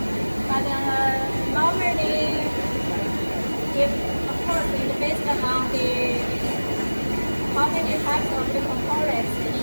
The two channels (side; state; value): both; inverted; correlation -1.00